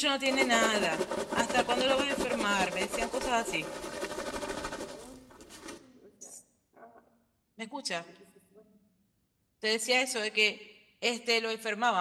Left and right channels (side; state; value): both; identical; correlation 1.00